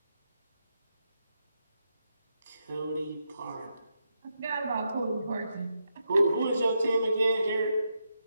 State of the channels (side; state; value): both; inverted; correlation -0.84